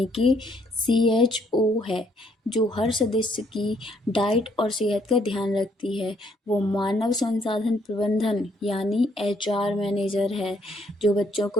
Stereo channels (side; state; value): both; normal; correlation 0.69